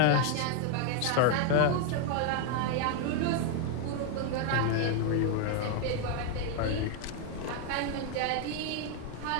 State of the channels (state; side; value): different; both; correlation 0.01